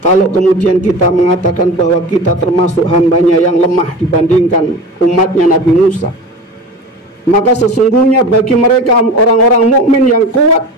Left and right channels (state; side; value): normal; both; correlation 0.32